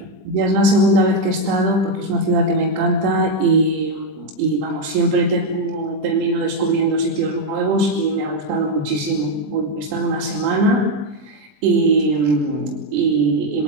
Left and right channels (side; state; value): left; late; 20 ms